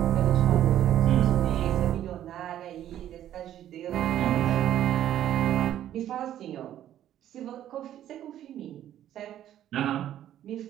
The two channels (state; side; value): quieter; left; 11.6 dB